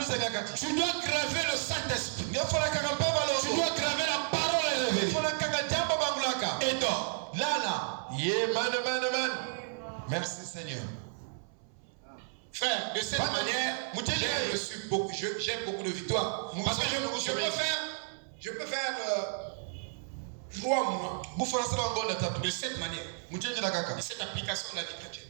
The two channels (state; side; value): silent; left; 56 dB below the other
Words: Tu dois graver le Saint-Esprit. Tu dois graver la parole révélée. Et toi, merci Seigneur. Frère, de cette manière, j'ai beaucoup de victoires. Parce que je peux faire 3 mois de cette manière. De cette application de la vie chrétienne.